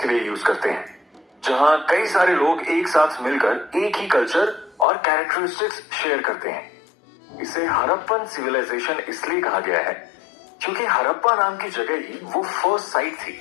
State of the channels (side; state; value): right; drops out; at 4.9 s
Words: लिए यूज करते हैं, जहां कई सारे लोग एक साथ मिलकर एक ही कल्चर और कैरेक्टरिस्टिक्स शेयर करते हैं। इसे हड़प्पन सिविलाइजेशन इसलिए कहा गया है क्योंकि हड़प्पा नाम की जगह ही वो फर्स्ट साइट थी